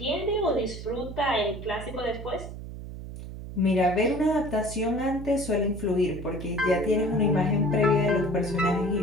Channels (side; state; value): right; noise; hum, 10 dB below the sound